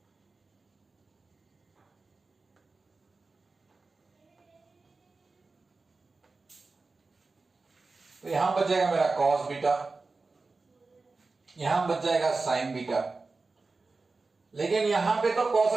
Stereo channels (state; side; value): quieter; left; 3.8 dB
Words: तो यहां बच जाएगा मेरा कॉस बीटा, यहां बच जाएगा साइन बीटा, लेकिन यहां पे तो कॉस